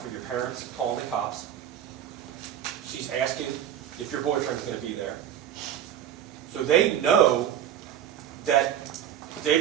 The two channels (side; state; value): left; quieter; 10.2 dB